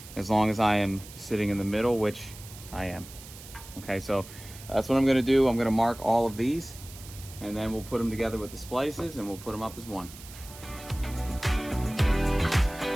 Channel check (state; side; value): noise; right; hiss, 17 dB below the sound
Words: as long as I am sitting in the middle, which I am. Okay, so that's what I'm gonna do. I'm gonna mark all of these, and then we'll put them together with the splices and we'll put them up as one.